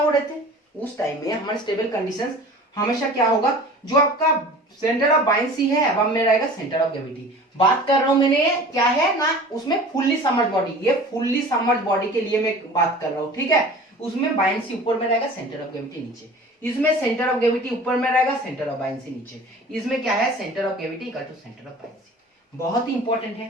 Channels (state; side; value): normal; both; correlation 0.42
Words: रहे थे, उस टाइम में हमारे स्टेबल कंडीशंस हमेशा क्या होगा, जो आपका सेंटर ऑफ बायंसी है अब में रहेगा सेंटर ऑफ ग्रेविटी। बात कर रहा हूं मैंने क्या है ना, उसमें फुल्ली समर्ज बॉडी, ये फुल्ली समर्ज बॉडी के लिए मैं बात कर रहा हूं। ठीक है, उसमें बायंसी ऊपर में रहेगा, सेंटर ऑफ ग्रेविटी नीचे, इसमें सेंटर ऑफ ग्रेविटी ऊपर में रहेगा, सेंटर ऑफ बायंसी नीचे, इसमें क्या है, centre of gravity equal to centre of buoyancy. बहुत ही इंपॉर्टेंट